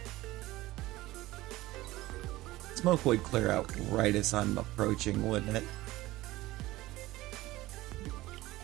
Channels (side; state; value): left; quieter; 17.9 dB